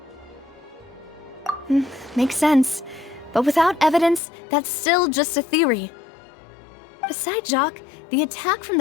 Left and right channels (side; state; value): right; drops out; at 4.2 s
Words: Makes sense. But without evidence, that's still just a theory. Besides Jacques, the attack from